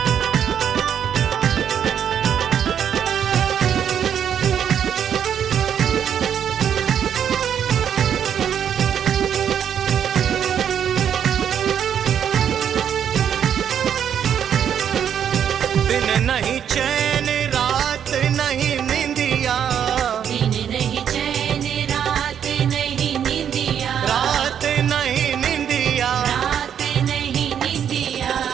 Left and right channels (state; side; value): quieter; left; 8.8 dB